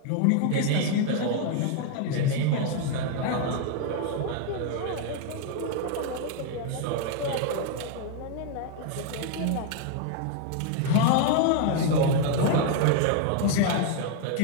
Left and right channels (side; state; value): both; different; correlation 0.00